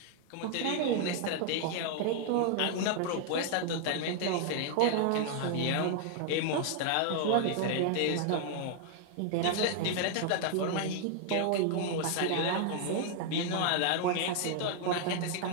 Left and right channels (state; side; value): different; both; correlation 0.00